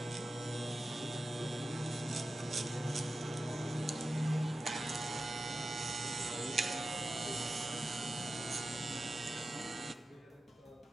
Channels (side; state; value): both; normal; correlation 0.93